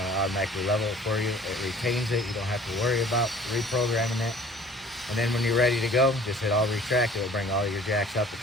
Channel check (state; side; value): normal; both; correlation 0.49